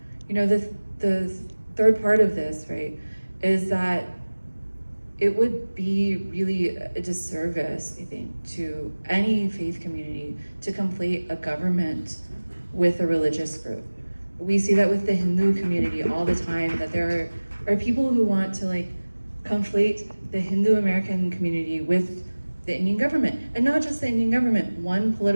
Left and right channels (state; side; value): inverted; both; correlation -1.00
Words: the third part of this, right, is that it would be really a disservice, I think, to any faith community to conflate a government with a religious group. We see that with the Hindu community all the time, that there are people who want to conflate the Hindu American community with the Indian government, and not just the Indian government, one